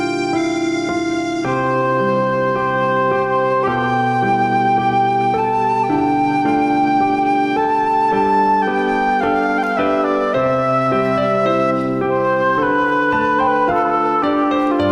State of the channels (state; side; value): identical; both; correlation 1.00